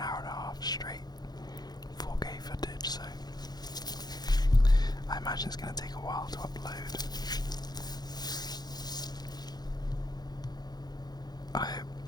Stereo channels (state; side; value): late; right; 0.19 ms